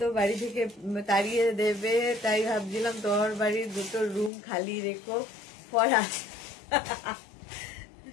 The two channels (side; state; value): right; drops out; at 4.3 s